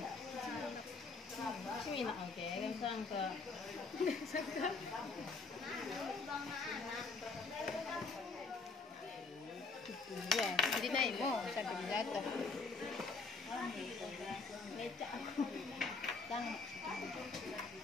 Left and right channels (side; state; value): right; quieter; 4.1 dB